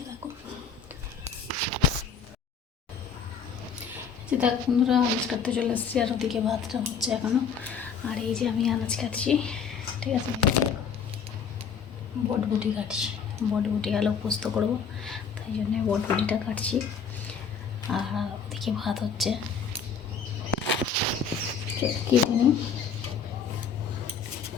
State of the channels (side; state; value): right; quieter; 6.3 dB